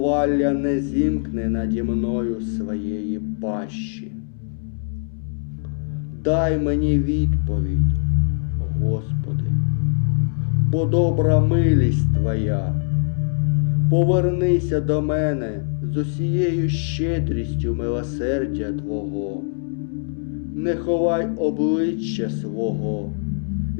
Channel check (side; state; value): right; silent; 64 dB below the other